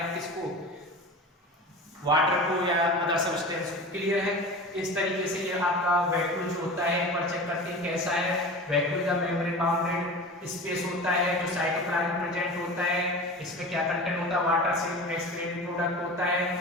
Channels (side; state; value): both; normal; correlation 0.33